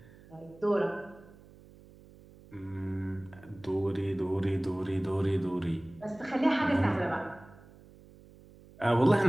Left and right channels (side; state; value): right; noise; hum, 23 dB below the sound